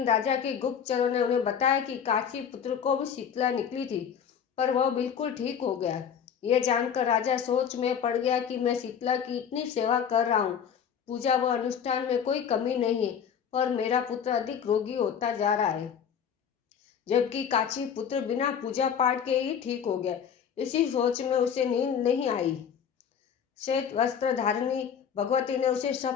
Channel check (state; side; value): quieter; right; 7.8 dB